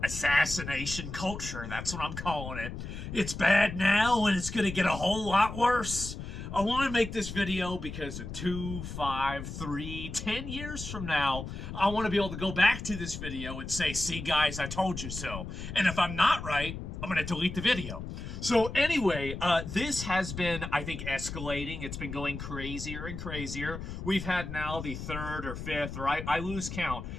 Assassination culture, that's what I'm calling it. It's bad now and it's going to get a whole lot worse. I want to make this video because in 2, 5, 3, 10 years from now, I want to be able to go back to this video and say, see guys, I told you so. And if I'm not right, I'm going to delete the video. So anyway, this has been, I think, escalating. It's been going crazier and crazier. We've had now the third or fifth, or I lose count,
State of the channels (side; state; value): left; noise; rumble, 8 dB below the sound